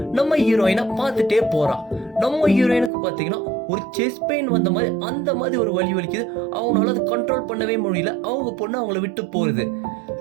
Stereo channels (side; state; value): left; drops out; at 2.9 s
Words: நம்ம ஹீரோயினை பார்த்துட்டே போறான். நம்ம ஹீரோயினுக்கு பாத்தீங்கன்னா ஒரு செஸ்ட் பெயின் வந்த மாதிரி அந்த மாதிரி ஒரு வலி வலிக்குது. அவங்களால அதை கண்ட்ரோல் பண்ணவே முடியல. அவங்க பொண்ணு அவங்கள விட்டு போகுது.